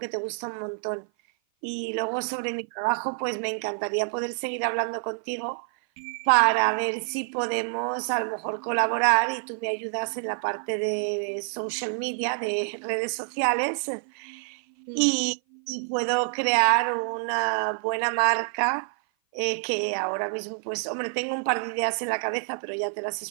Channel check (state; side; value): silent; left; 55 dB below the other